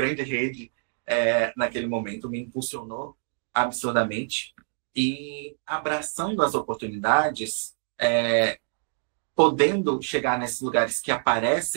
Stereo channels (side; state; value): left; silent; digital silence